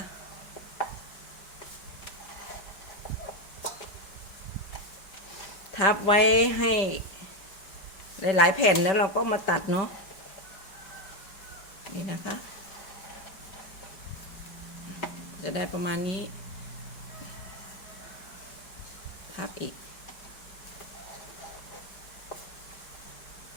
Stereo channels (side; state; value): right; late; 5.1 ms